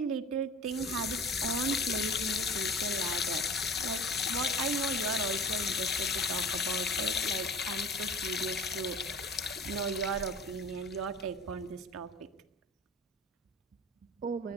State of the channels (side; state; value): both; normal; correlation 0.40